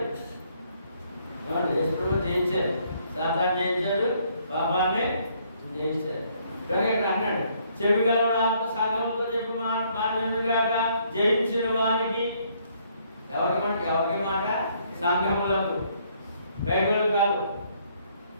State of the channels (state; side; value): inverted; both; correlation -0.67